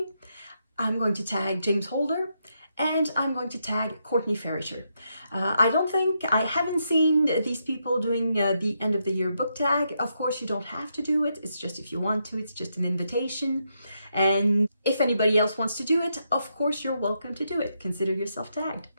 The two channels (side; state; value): both; inverted; correlation -0.81